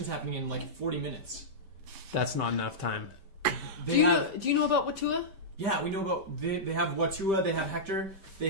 happening in like 40 minutes. That's not enough time. Do you know about Watua? Yeah, we know about. They have Watua, they have Hector,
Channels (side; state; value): left; late; 5.1 ms